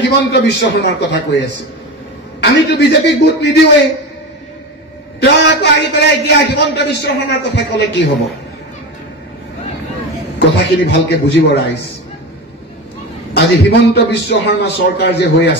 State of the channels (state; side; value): normal; both; correlation 0.24